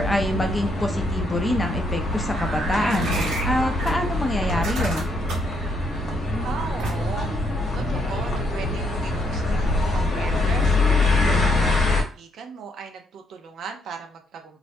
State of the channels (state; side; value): normal; both; correlation 0.73